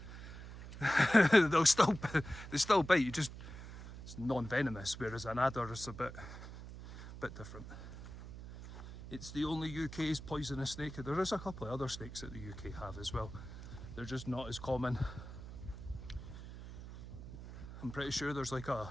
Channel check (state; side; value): noise; right; hum, 12 dB below the sound